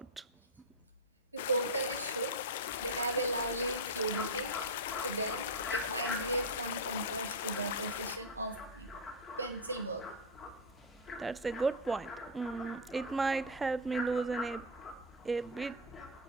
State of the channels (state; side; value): normal; both; correlation 0.02